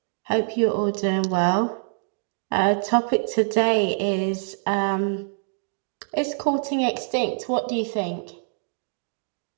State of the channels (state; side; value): silent; left; digital silence